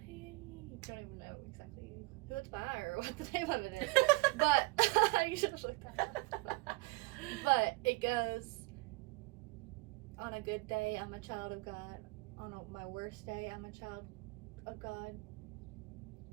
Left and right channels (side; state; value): left; quieter; 25.6 dB